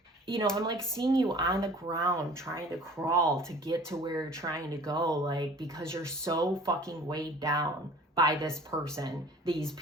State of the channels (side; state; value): both; normal; correlation 0.47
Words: you know, I'm like seeing you on the ground trying to crawl to get to where you're trying to go, like, because you're so fucking weighed down by this person, these